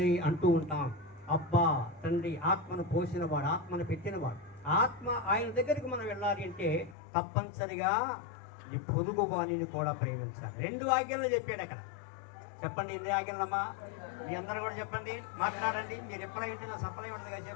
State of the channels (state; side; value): drops out; right; at 7.0 s